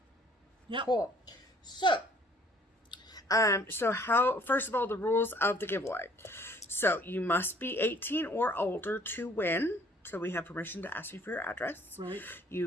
Yep. Cool. So, first of all, the rules of the giveaway. So, you must be 18 or older to win. So, we have permission to ask you for your address. Right.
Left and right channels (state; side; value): normal; both; correlation 0.58